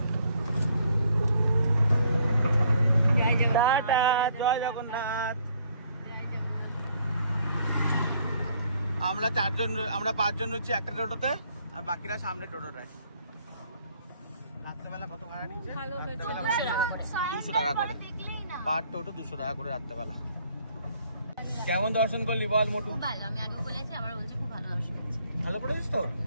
টাটা, জয় জগন্নাথ। আমরা 5জন রয়েছি একটা টোটোতে, আর বাকিরা সামনে টোটো রায়। রাত্রেবেলা কত ভাড়া নিচ্ছে? 200 টাকা করে পার টোটো, 200 টাকা করে রাত্রেবেলা। কেমন দর্শন করলি বল মোটু? ভালো, আমি আগেও বলেছি, আমরা বলছি খুব ভালো দর্শন হচ্ছে। ভালো পড়েছিস তো?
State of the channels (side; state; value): both; inverted; correlation -0.65